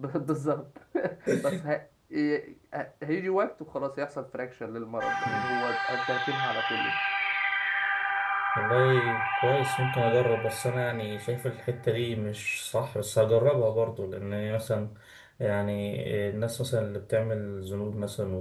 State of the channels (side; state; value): both; identical; correlation 1.00